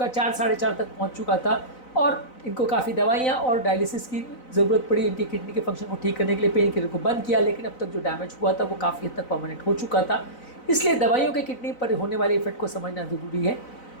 4 साढ़े 4 तक पहुंच चुका था और इनको काफ़ी दवाइयाँ और डायलिसिस की ज़रूरत पड़ी इनकी किडनी के फंक्शन को ठीक करने के लिए। पेन किलर को बंद किया, लेकिन अब तक जो डैमेज हुआ था वो काफ़ी हद तक परमानेंट हो चुका था। इसलिए दवाइयों के किडनी पर होने वाले इफेक्ट को समझना ज़रूरी है।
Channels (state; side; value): late; right; 4.0 ms